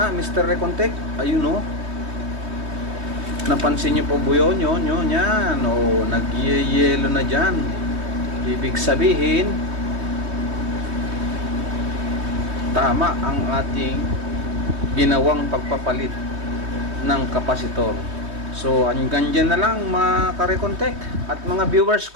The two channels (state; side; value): late; left; 3.2 ms